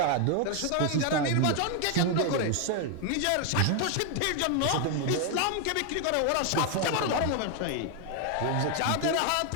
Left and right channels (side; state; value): both; different; correlation 0.01